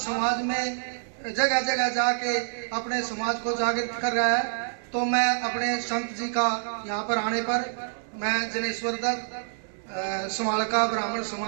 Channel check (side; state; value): left; silent; digital silence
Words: में जगह जगह जाके अपने समाज को जागृत कर रहा है, तो मैं अपने संत जी का यहाँ पर आने पर मैं जनेश्वर दत्त समालका ब्राह्मण